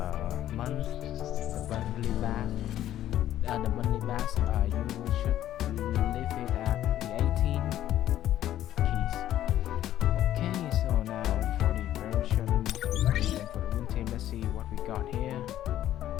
monthly bass, you should leave it at the 18 keys. Okay, so now for the version and for the win team, let's see what we got here.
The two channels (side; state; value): right; quieter; 12.4 dB